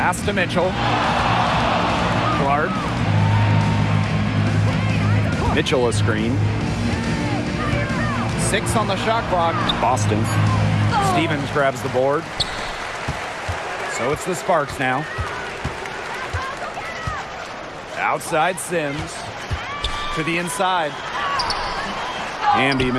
to Mitchell. Clark. Mitchell a screen. 6 on the shot clock. Boston. Stevens grabs the board. So it's the Sparks now. Outside Sims. To the inside. Hamby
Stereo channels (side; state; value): both; identical; correlation 1.00